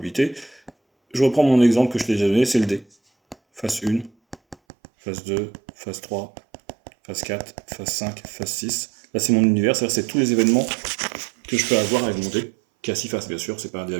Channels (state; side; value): drops out; left; at 4.5 s